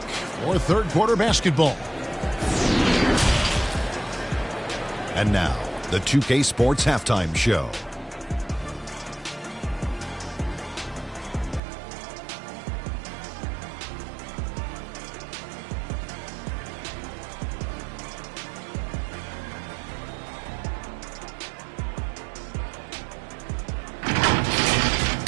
for third quarter basketball. And now, the 2K Sports Halftime Show.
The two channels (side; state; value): left; drops out; at 11.6 s